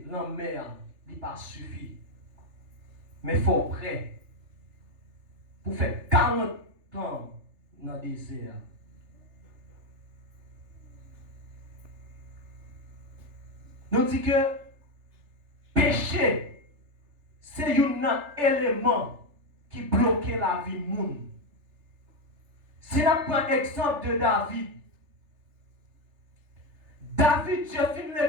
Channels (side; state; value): left; late; 3.4 ms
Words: dans la mer, il pas suffit. Mais il faut prêt pour faire 40 ans dans le désert. Nous disons que péché, c'est un élément qui bloque la vie du monde. Si nous prenons l'exemple de David, Dieu finit